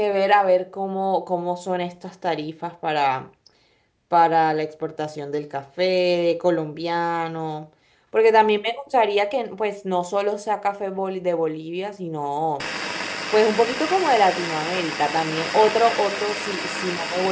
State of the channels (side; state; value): both; identical; correlation 1.00